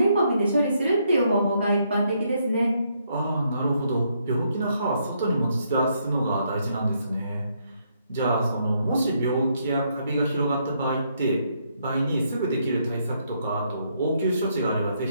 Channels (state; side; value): inverted; both; correlation -0.74